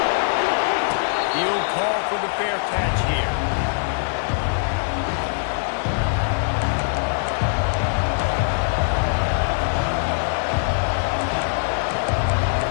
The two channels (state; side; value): silent; right; digital silence